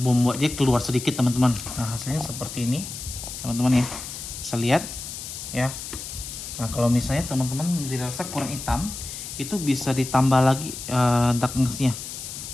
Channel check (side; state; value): left; noise; hiss, 9 dB below the sound